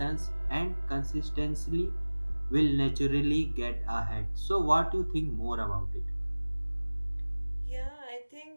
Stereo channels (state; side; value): inverted; both; correlation -1.00